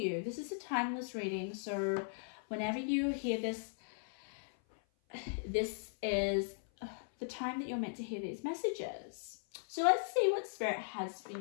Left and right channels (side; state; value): right; silent; 52 dB below the other